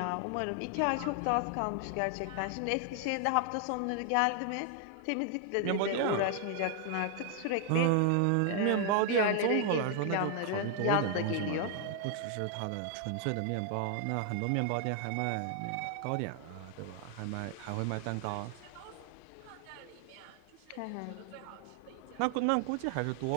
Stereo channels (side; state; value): both; different; correlation 0.00